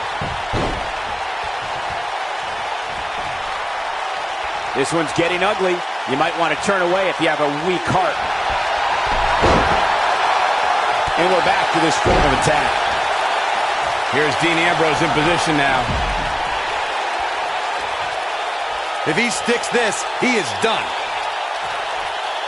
This one's getting ugly. You might want to turn away if you have a weak heart. And we're back to this form of attack. Here's Dean Ambrose in position now. If he sticks this, he is done.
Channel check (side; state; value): both; identical; correlation 1.00